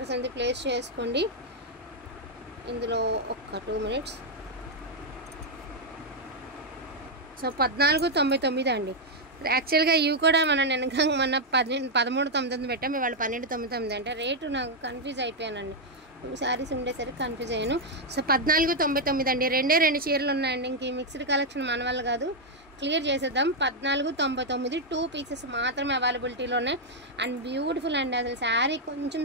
అనేది ప్లేస్ చేసుకోండి. ఇందులో ఒక్క 2 minutes. సో 1499 అండి. యాక్చువల్గా ఇవి కూడా మనం మొన్న 1399 పెట్టాం. ఇవాళ 1299 అంటే రేటు నాకు కన్ఫ్యూజ్ అయిపోయానండి. 2 శారీస్ ఉండేసరికి కన్ఫ్యూజ్ అయ్యాను. సో 1499 అండి. 2 చీరలు ఉన్నాయండి. ఇంక ఈ మిక్స్డ్ కలెక్షన్ మన వల్ల కాదు, క్లియర్ చేసేద్దాం. 1499 2 pieces మాత్రమే అవైలబిలిటీలో ఉన్నాయి. అండ్ బ్యూటిఫుల్ అండి. అసలు శారీ కొంచెం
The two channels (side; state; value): both; normal; correlation 0.00